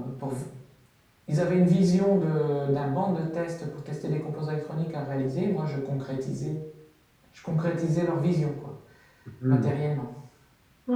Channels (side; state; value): both; identical; correlation 1.00